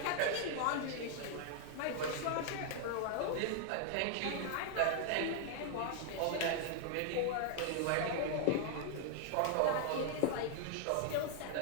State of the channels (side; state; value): both; different; correlation 0.00